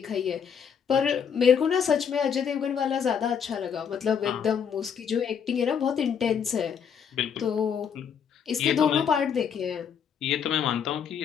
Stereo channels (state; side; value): quieter; right; 7.5 dB